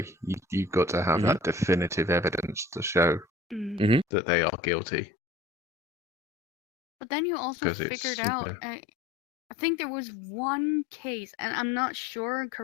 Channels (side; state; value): right; drops out; at 4.0 s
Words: you've got to have that definitive evidence to show that they are guilty. But then you also figured out, I think there was one case, and I'm not sure,